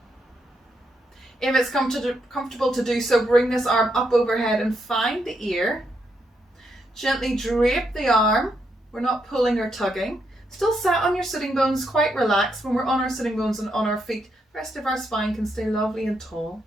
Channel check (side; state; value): both; normal; correlation 0.79